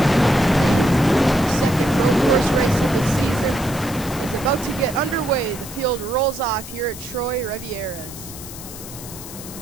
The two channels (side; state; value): left; noise; hiss, 13 dB below the sound